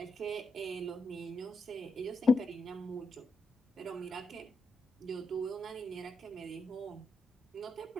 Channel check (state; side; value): normal; both; correlation 0.83